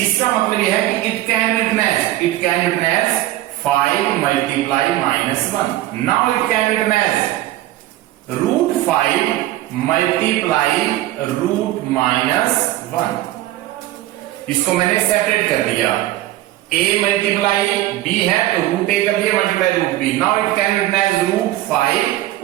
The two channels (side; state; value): left; quieter; 15.3 dB